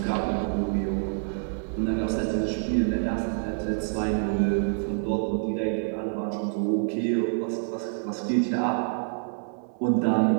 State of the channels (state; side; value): silent; left; 60 dB below the other